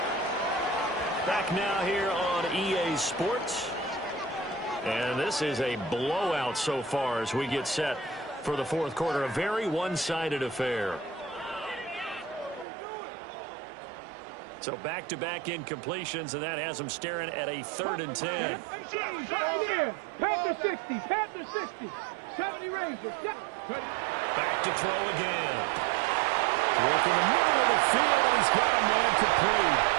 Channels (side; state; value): left; drops out; at 12.7 s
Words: Back now here on EA Sports. And this is a blowout so far as we get set for the 4th quarter. A very one-sided affair. So back-to-back incompletions, and that has them staring at a 3rd and 10. Panther 60. Panther 60. 70 Rangers. Back to throw again. Work in the middle of the field, and he's got a man complete.